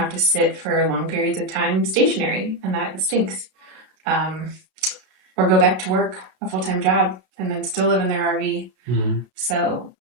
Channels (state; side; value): late; left; 32 ms